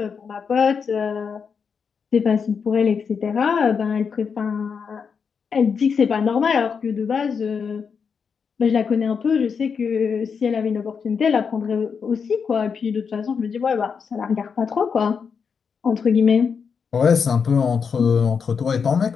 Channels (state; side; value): quieter; right; 6.1 dB